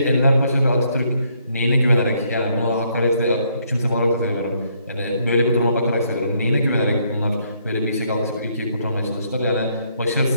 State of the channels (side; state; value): both; inverted; correlation -0.71